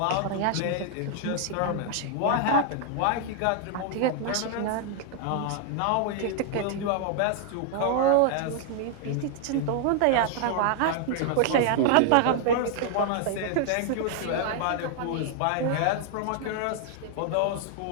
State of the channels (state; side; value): different; both; correlation 0.00